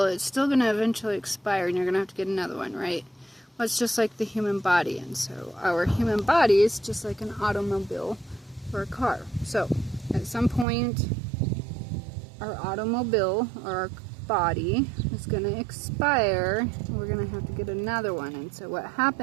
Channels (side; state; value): left; drops out; at 10.7 s